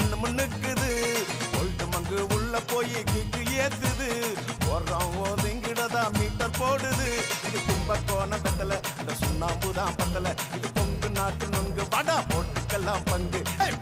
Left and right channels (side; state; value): both; identical; correlation 1.00